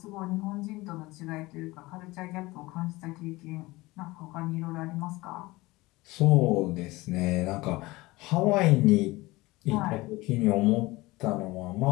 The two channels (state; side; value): quieter; right; 20.8 dB